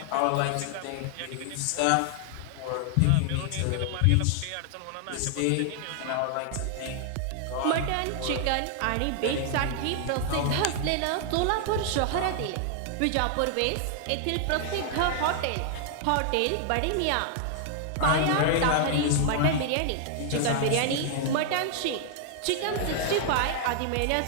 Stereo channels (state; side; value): different; both; correlation 0.00